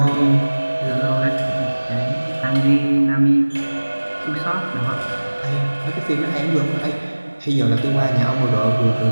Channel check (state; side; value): inverted; both; correlation -1.00